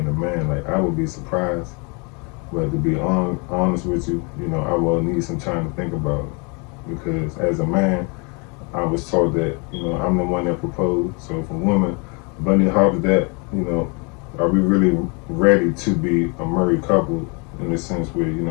a man. Like, I would be surprised, but to be honest with you, I will need some time to think about it, because as a man, I was taught that, I'm the one that proposed. So if a woman bunny hops that, are we really ready to be a married couple in the sense where,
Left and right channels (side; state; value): right; quieter; 32.8 dB